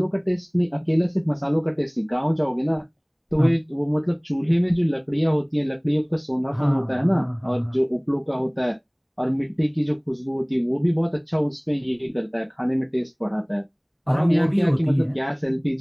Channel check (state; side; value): identical; both; correlation 1.00